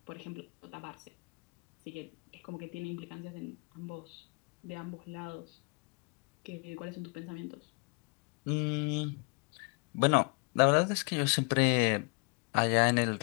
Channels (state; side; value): quieter; right; 33.4 dB